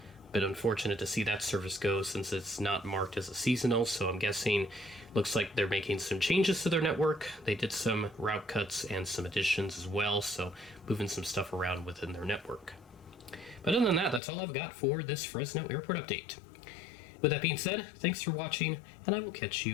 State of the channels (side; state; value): right; drops out; at 14.2 s